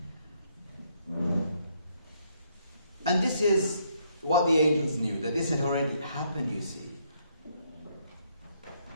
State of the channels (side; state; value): both; inverted; correlation -0.71